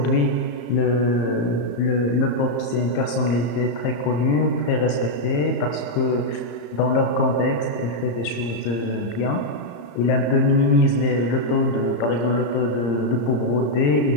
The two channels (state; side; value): late; right; 34 ms